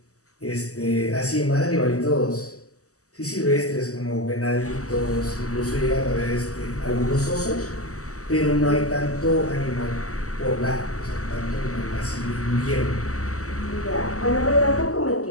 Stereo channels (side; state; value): right; late; 0.66 ms